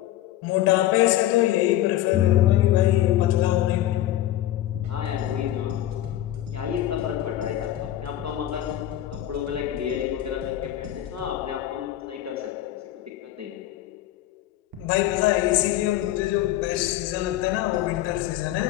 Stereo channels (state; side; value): quieter; right; 13.5 dB